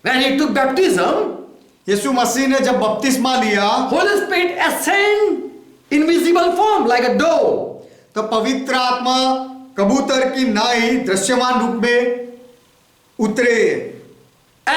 when he took baptism, यीशु मसीह ने जब बपतिस्मा लिया Holy Spirit ascend in visible form like a dove. तो पवित्र आत्मा कबूतर की नाई दृश्यमान रूप में उतरे।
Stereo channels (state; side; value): identical; both; correlation 1.00